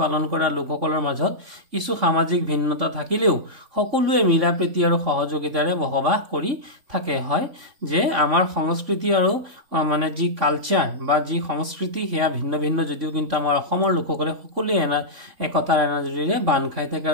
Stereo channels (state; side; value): late; left; 3.6 ms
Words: পালন কৰা লোকসকলৰ মাজত কিছু সামাজিক ভিন্নতা থাকিলেও সকলোৱে মিলাপ্ৰীতি আৰু সহযোগিতাৰে বসবাস কৰি থাকে হয় যে আমাৰ সংস্কৃতি আৰু মানে যি কালচাৰ বা যি সংস্কৃতি হেয়া ভিন্ন ভিন্ন যদিও কিন্তু আমাৰ অসমৰ লোকসকলে সকলোৱে একতাৰ এনাজৰীৰে বান্ধ খাই থাকে